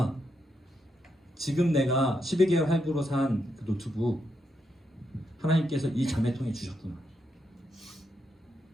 지금 내가 12개월 할부로 산 그 노트북 하나님께서 이 자매통에 주셨구나.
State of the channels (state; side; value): normal; both; correlation 0.81